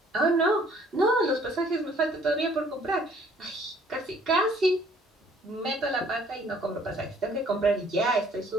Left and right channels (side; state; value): both; normal; correlation 0.59